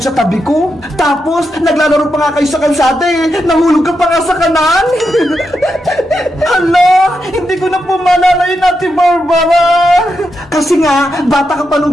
sa tabi ko. Tapos, naglalaro pa nga kayo sa kalsada eh. Nahulog ka pa nga sa kanan. Hala, hindi ko na po maalala yun, Ate Barbara. Kasi nga, bata ka pa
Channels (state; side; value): normal; both; correlation 0.85